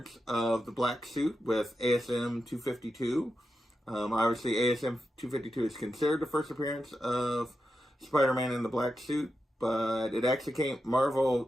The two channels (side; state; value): both; normal; correlation 0.88